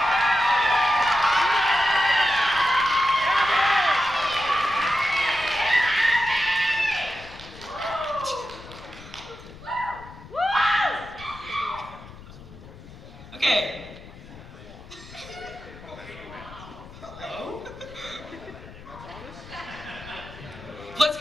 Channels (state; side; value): noise; left; rumble, 17 dB below the sound